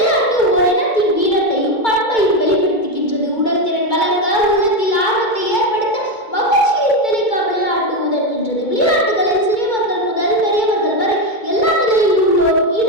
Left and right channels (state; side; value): late; right; 2.2 ms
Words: ஓர் இனத்தின் வீரத்தையும் பண்பையும் வெளிப்படுத்துகின்றது. உடல் திறன் வளர்க்க, உள்ளத்தில் ஆர்வத்தை ஏற்படுத்த, மகிழ்ச்சியை தெளிக்க விளையாட்டு உதவுகின்றது. விளையாட்டுகளில் சிறியவர்கள் முதல் பெரியவர்கள் வரை எல்லா நிலையில் உள்ளோரும்